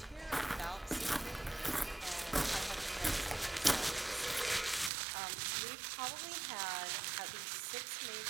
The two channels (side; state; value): left; drops out; at 4.9 s